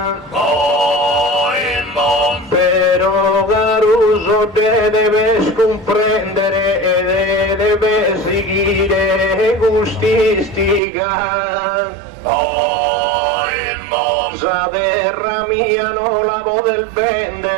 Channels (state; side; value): drops out; left; at 10.8 s